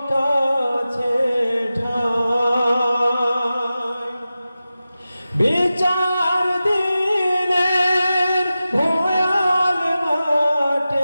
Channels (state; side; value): inverted; both; correlation -0.94